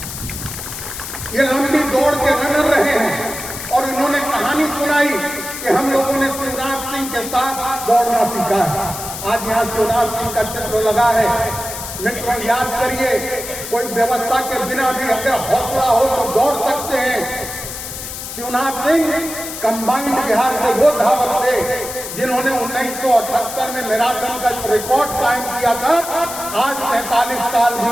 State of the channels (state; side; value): noise; left; hiss, 8 dB below the sound